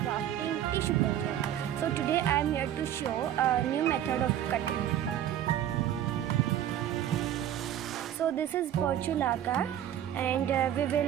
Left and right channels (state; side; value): quieter; left; 11.1 dB